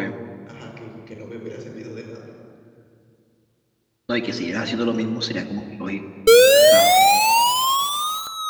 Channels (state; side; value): identical; both; correlation 1.00